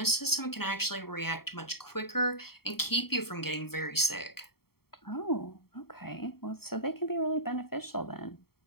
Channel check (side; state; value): right; late; 0.95 ms